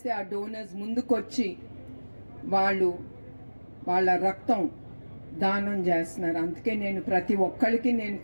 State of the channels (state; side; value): inverted; both; correlation -1.00